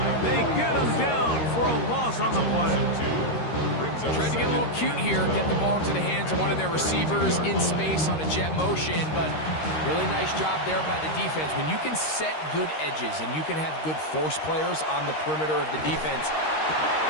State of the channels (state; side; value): late; right; 13 ms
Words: They get him down for a loss on the play. Tried to get a little cute here, get the ball into the hands of one of their receivers in space on a jet motion, but really nice job there by the defense. When you can set good edges and you can have good force players on the perimeter of the defense.